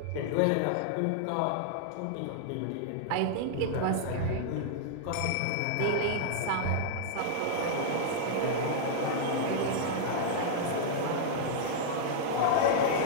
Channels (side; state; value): both; different; correlation -0.01